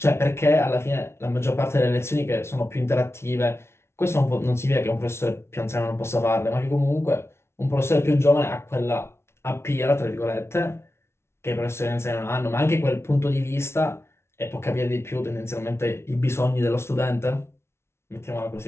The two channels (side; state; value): right; late; 0.12 ms